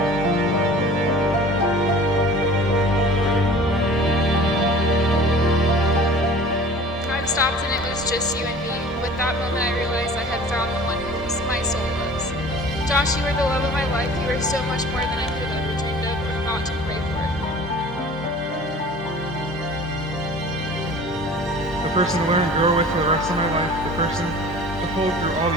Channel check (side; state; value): both; normal; correlation 0.44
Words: Time stopped and it was just you and me. With that moment, I realized I had found the one who my soul loves. Josh, you are the love of my life. You are so much more than I could have ever dreamed of or thought to pray for. The person to learn and grow with for the rest of my life, the person to hold through all